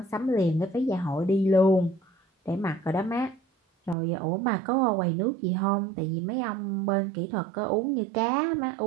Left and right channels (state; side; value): drops out; left; at 4.0 s